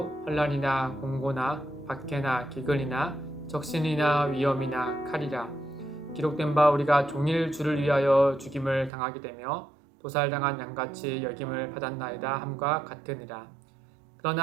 환난이나 공고나 박해나 기근이나 적신이나 위험이나 칼이라. 기록된 바 우리가 종일 주를 위하여 죽임을 당하게 되며 도살당한 양같이 여김을 받았나이다 함과 같으니라.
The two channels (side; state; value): left; drops out; at 8.9 s